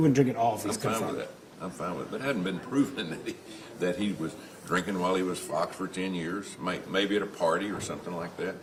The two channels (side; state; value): both; identical; correlation 1.00